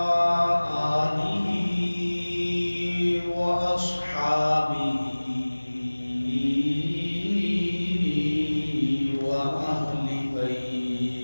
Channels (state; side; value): inverted; both; correlation -1.00